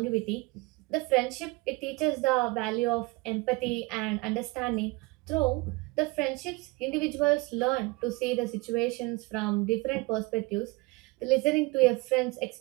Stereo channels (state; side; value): quieter; left; 24.0 dB